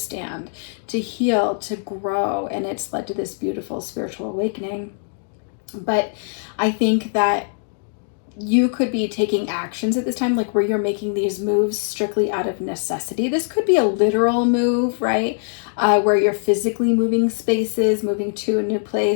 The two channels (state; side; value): silent; right; digital silence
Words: to heal, to grow, and it's led to this beautiful spiritual awakening. But I think that you could be taking actions at this time, like where you're making these moves strictly out of necessity. This could be a literal move, right? Where you're physically moving spaces, moving to a new